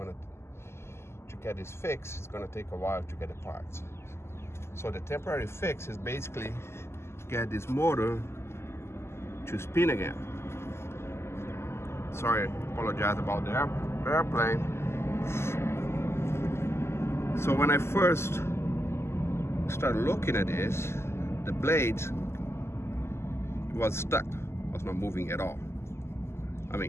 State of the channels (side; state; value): right; late; 0.12 ms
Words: to get this fixed, it's gonna take a while to get the parts. So the temporary fix is basically get this motor to spin again. Sorry, apologize about the airplane. So when I first started looking at this, the blade was stuck, was not moving at all. I